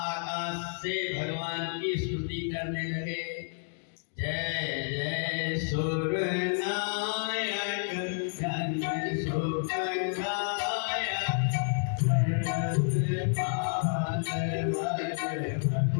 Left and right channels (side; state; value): right; silent; digital silence